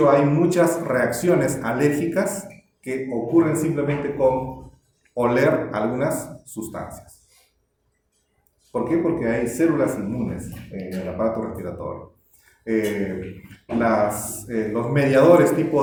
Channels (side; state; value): both; identical; correlation 1.00